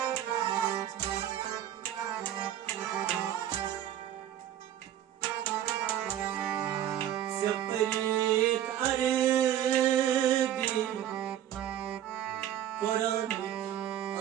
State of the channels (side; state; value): left; quieter; 11.2 dB